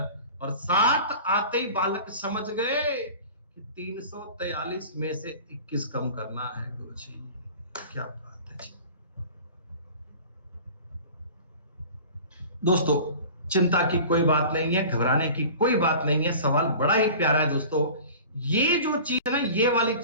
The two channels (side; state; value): both; inverted; correlation -0.41